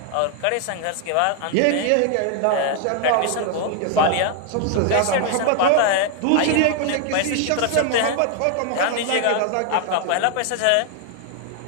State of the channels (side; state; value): both; different; correlation 0.00